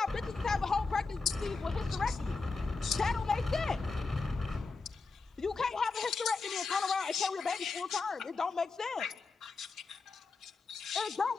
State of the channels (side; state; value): right; quieter; 4.2 dB